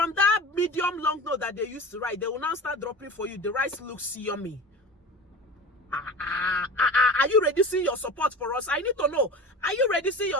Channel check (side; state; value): both; normal; correlation 0.33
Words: that medium long note that they used to write, they will now start dropping for you. The rice looks yummy. Are you reducing your support for us? I need to know. Are you reducing